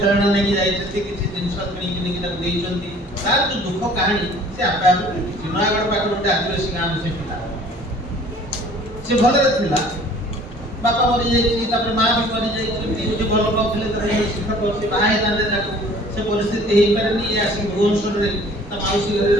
ନେଇକି ଯାଇଛନ୍ତି, କିଛି ଜିନିଷ କିଣିକି ନେଇକି ତାକୁ ଦେଇଛନ୍ତି। ତାର ଯୋଉ ଦୁଃଖ କାହାଣୀ ସେ ଆପେ ଆପେ ବୁଝୁଛି। ନୟାଗଡ଼ ପାଖରେ ଗୋଟେ ଆଦିବାସୀ ଗାଁର ସେ ପିଲା, ସେ ଭଲରେ ଥିଲା, ବାପା ମରିଯାଇଛି, ତାପରେ ମା ବି ମରିଯାଇଛନ୍ତି, ଗୋଟେ ଭଲ ପାଉଥିଲେ ତାର ଶିକ୍ଷକ, ସେ ବାହା ହେଇଥାନ୍ତେ, ତାକୁ ସେ ପରିସ୍ଥିତି ହେଇପାରେନି। ଇଏ ଆସିକି ଭୁବନେଶ୍ୱରରେ ତା ମାଉସୀ ଘରେ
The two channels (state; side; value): normal; both; correlation 0.52